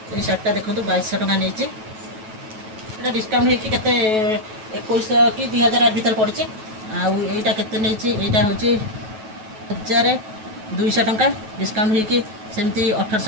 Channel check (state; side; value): late; left; 9.2 ms